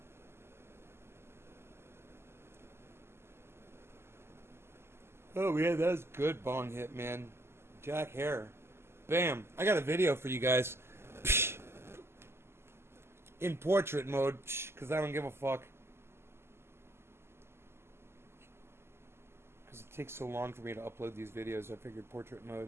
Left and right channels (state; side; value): late; left; 0.12 ms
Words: Oh, yeah, that was good bong hit, man. Jack Hare. Bam. I got a video for you guys. Psh. In portrait mode, because I don't give a fuck. Because it takes so long for me to upload these videos, I figured portrait